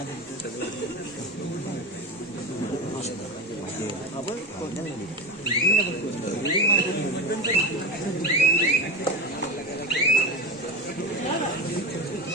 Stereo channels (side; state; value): both; normal; correlation 0.23